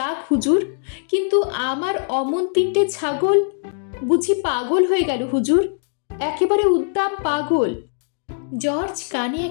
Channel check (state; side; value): silent; right; digital silence